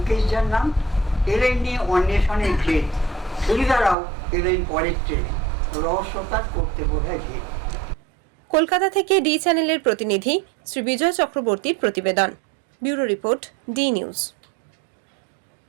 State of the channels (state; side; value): drops out; left; at 4.0 s